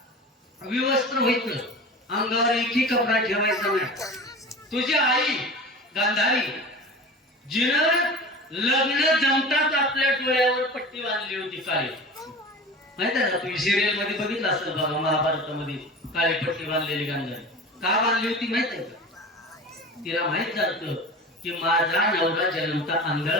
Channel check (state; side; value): normal; both; correlation 0.34